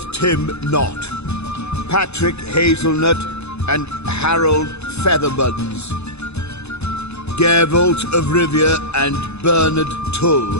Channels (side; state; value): right; late; 0.80 ms